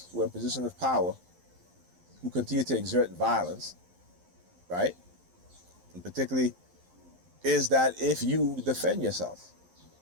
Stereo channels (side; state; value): left; late; 11 ms